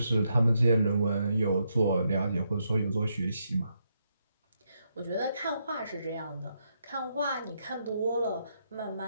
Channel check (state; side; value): inverted; both; correlation -0.79